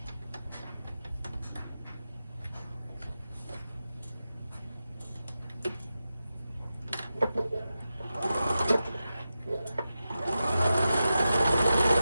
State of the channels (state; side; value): inverted; both; correlation -0.91